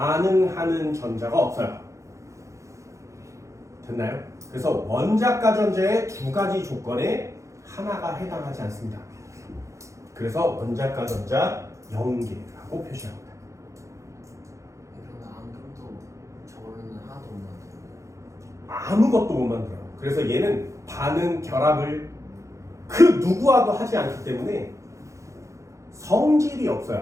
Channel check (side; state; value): left; late; 0.15 ms